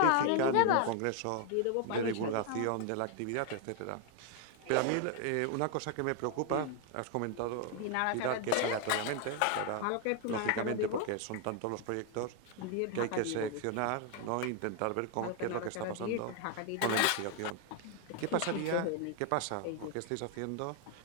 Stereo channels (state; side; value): different; both; correlation 0.00